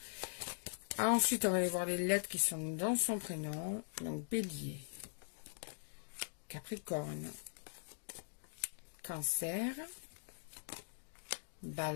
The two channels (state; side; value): silent; right; digital silence